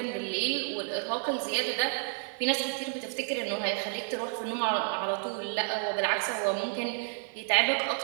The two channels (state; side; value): silent; left; 57 dB below the other